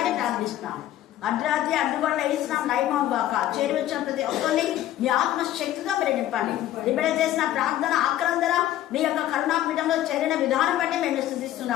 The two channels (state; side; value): quieter; right; 13.1 dB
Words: ప్రార్థిస్తున్నాను. అర్ధరాత్రి అడ్డుగొండ వేసినాం లైమం బాక చేరి వచ్చిన ప్రతి ఒక్కరిని మీ ఆత్మశక్తిగా మీరు నింపండి. ఇప్పుడు చేసిన ప్రార్థన ఆక్రందన మీ యొక్క కరుణాపీఠంలో చేరిన విధానం బట్టి మేము